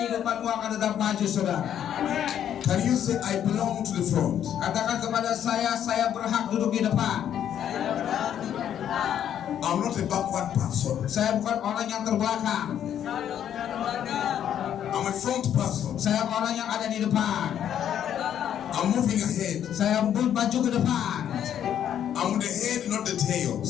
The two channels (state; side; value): quieter; right; 9.9 dB